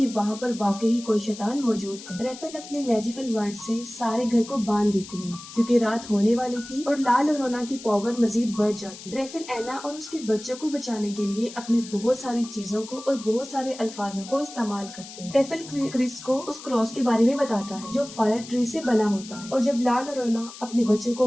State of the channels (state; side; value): noise; left; hiss, 15 dB below the sound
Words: वहाँ पर वाकई कोई शैतान मौजूद है। रेफेल अपने मैजिकल वर्ड से सारे घर को बांध देती है क्योंकि रात होने वाली थी और लाल लोरोना की पावर मजीद बढ़ जाती है। रेफेल एना और उसके बच्चों को बचाने के लिए अपने बहुत सारी चीजों को और बहुत सारे अल्फाजों को इस्तेमाल करते हैं। रेफेल क्रिस को उस क्रॉस के बारे में बताता है जो फायर ट्री से बना होता है, और जब लाल लोरोना अपने बच्चों को